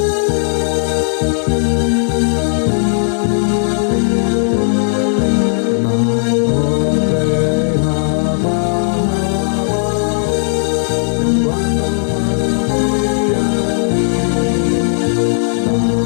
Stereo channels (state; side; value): silent; right; digital silence